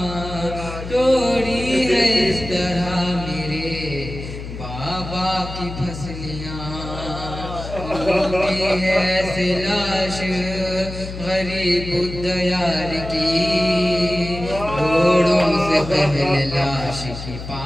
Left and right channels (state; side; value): noise; left; hum, 9 dB below the sound